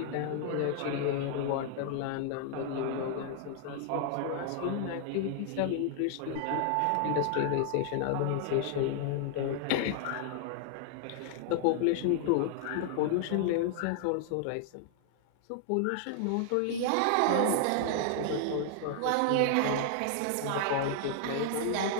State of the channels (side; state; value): both; different; correlation 0.00